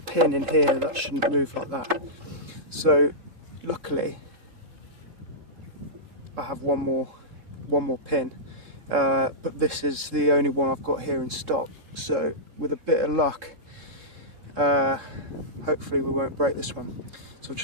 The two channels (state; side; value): late; left; 3.7 ms